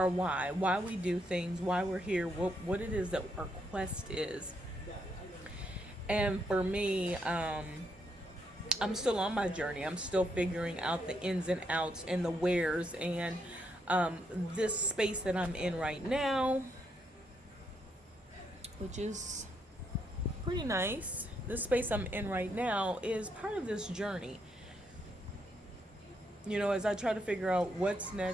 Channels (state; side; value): normal; both; correlation 0.77